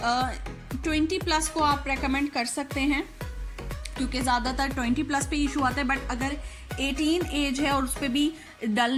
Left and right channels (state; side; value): identical; both; correlation 1.00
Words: 20+ को आप रेकमेंड कर सकते हैं, क्योंकि ज़्यादातर 20+ पे इशू आता है। बट अगर 18 एज है और उस पर भी